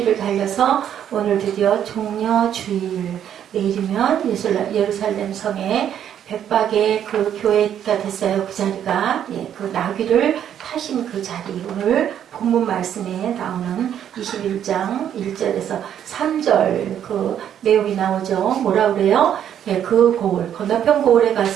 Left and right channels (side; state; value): left; quieter; 9.8 dB